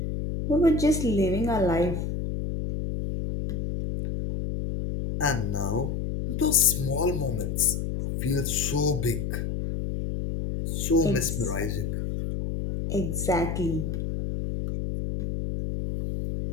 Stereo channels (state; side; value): noise; left; hum, 3 dB below the sound